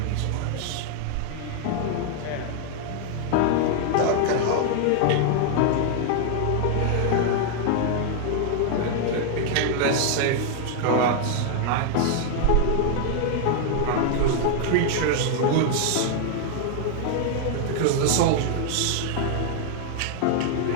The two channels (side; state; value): both; different; correlation 0.00